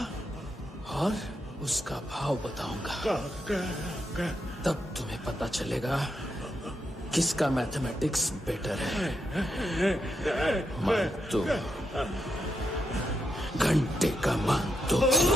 और उसका भाव बताऊंगा। तब तुम्हें पता चलेगा किसका मैथमेटिक्स बेटर है। मानतो, घंटे का मानतो।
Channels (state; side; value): normal; both; correlation 0.83